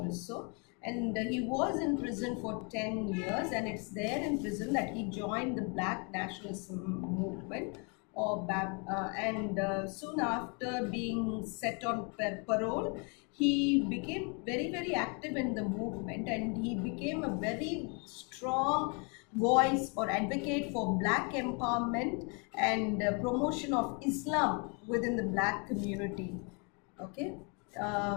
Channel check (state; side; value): quieter; right; 34.7 dB